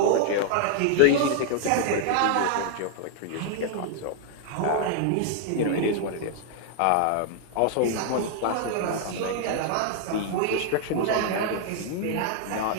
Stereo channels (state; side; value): different; both; correlation 0.00